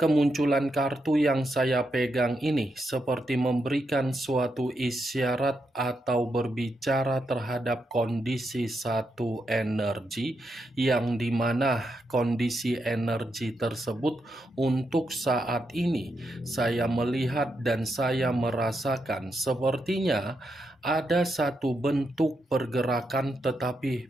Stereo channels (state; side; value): normal; both; correlation 0.83